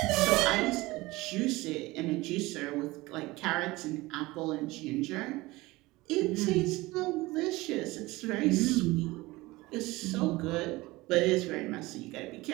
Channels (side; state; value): left; quieter; 20.5 dB